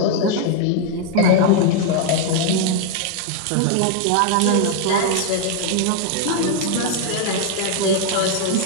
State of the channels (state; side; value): different; both; correlation 0.00